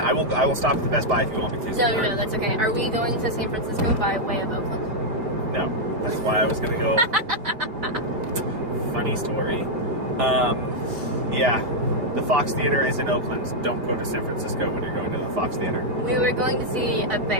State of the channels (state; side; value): late; left; 5.0 ms